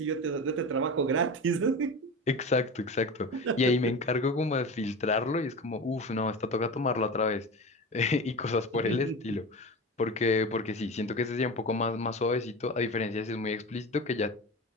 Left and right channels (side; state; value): both; normal; correlation 0.28